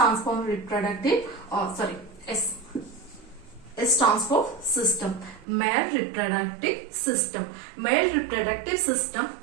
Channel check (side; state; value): left; drops out; at 5.5 s